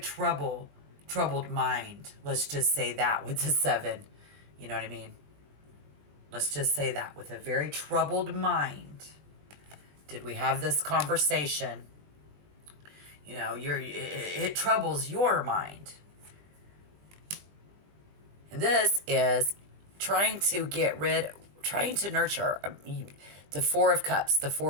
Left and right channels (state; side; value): late; left; 20 ms